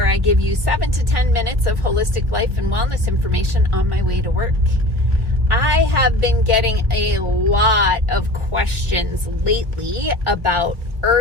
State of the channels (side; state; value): left; late; 1.8 ms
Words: I give you 7 to 10 minutes of holistic life and wellness information on my way to work. I have been getting a lot of questions lately about